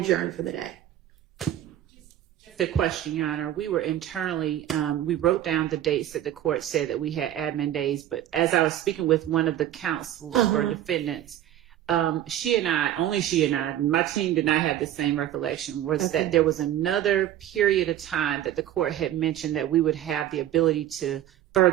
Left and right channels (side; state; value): left; quieter; 12.1 dB